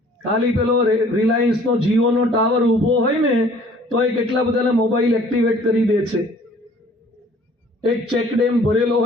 ખાલી પેલો રિલાયન્સનો જીઓનો ટાવર ઊભો હોય ને તો એ કેટલા બધાના મોબાઈલ એક્ટિવેટ કરી દે છે. એક ચેક ડેમ ભરેલો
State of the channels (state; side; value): normal; both; correlation 0.54